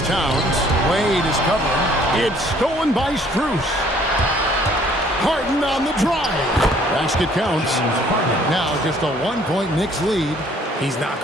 Towns. Wade is covering. It's stolen by Strus. Harden on the drive. Basket counts. Now just a 1-point Knicks lead. He's not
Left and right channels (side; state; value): both; normal; correlation 0.59